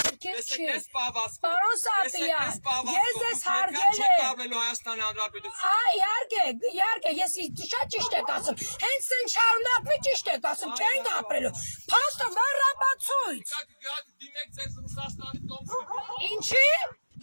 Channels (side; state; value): both; inverted; correlation -1.00